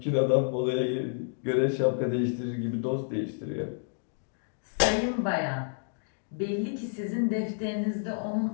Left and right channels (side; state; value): right; silent; digital silence